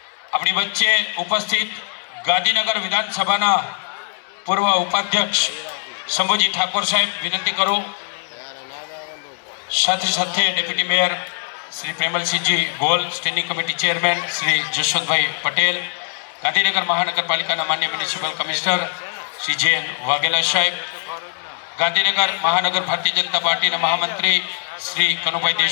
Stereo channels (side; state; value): right; silent; digital silence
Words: આપણી વચ્ચે ઉપસ્થિત ગાંધીનગર વિધાનસભાના પૂર્વ ઉપાધ્યક્ષ શંભુજી ઠાકોર સાહેબ, વિનંતી કરું. સાથે સાથે deputy mayor Shri Premalsinhji Gol, standing committee chairman Shri Jashwantbhai Patel, Gandhinagar મહાનગરપાલિકાના માન્ય municipal commissioner Shri J N. Vaghela સાહેબ, ગાંધીનગર મહાનગર ભારતીય જનતા પાર્ટીના મહામંત્રી શ્રી કનુભાઈ